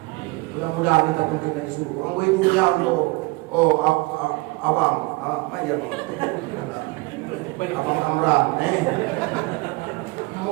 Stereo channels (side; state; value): left; quieter; 24.8 dB